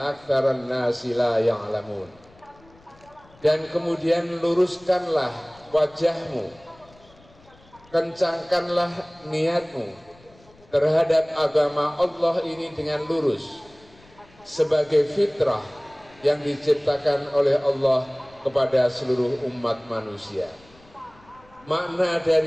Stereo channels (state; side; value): noise; left; rumble, 27 dB below the sound